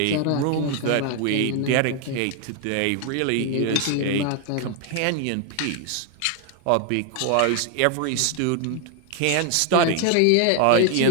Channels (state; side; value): different; both; correlation 0.01